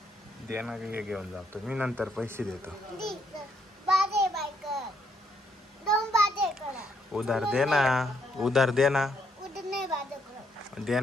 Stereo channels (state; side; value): normal; both; correlation 0.73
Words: दे ना, घेऊन जातो मी, नंतर पैसे देतो. बाजे बायकर. 2 बाजे करा. उधार दे ना. उधार दे ना. उधर नाही बाजे करा. दे